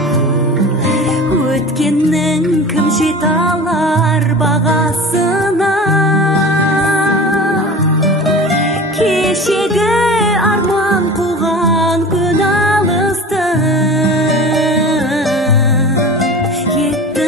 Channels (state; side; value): normal; both; correlation 0.36